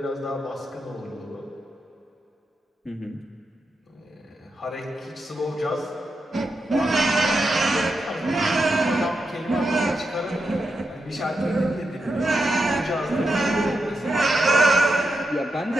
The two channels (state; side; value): normal; both; correlation 0.86